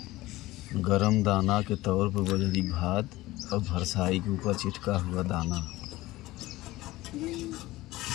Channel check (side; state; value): right; quieter; 18.0 dB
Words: गरम दाना के तौर पर बजरी भात और भरसाई के ऊपर चिटका हुआ दाना,